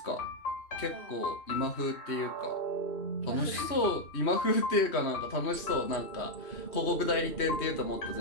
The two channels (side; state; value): right; late; 3.1 ms